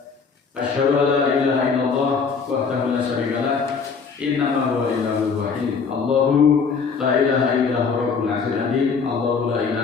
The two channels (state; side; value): quieter; right; 5.5 dB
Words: Asyhadu an la ilaha illallah wahdahu la syarika lah, innama huwa ilahul wahid. Allahu la ilaha illa huwa rabbul 'arsyil 'azim. Allahu la